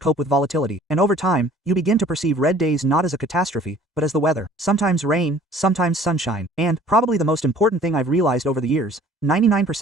with volatility. And over time, you begin to perceive red days not as a catastrophe, but as the weather. Sometimes rain, sometimes sunshine. And, probably the most important thing I've realized over the years,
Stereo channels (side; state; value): both; normal; correlation 0.52